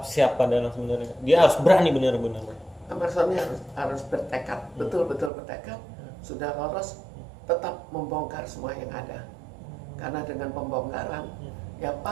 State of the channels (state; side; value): drops out; left; at 5.3 s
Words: siapa dalam sebenarnya? Dia harus berani benar-benar. Ahmad Zoni harus bertekad, betul-betul bertekad. Sudah lolos, tetap membongkar semua yang ada. Karena dengan pembongkaran, ya